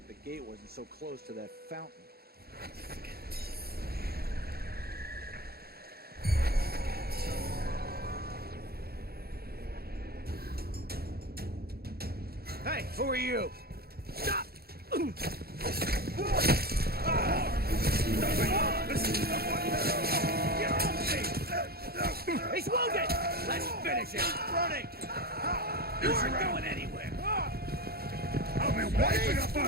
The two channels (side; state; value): left; late; 0.45 ms